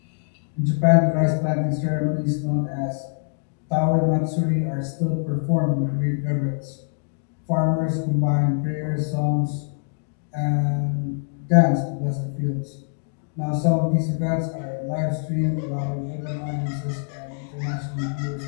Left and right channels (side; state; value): right; silent; digital silence